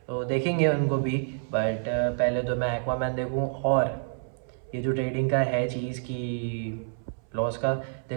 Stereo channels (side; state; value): left; silent; 59 dB below the other